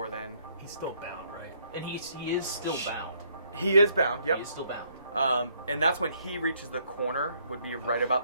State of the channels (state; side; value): inverted; both; correlation -0.69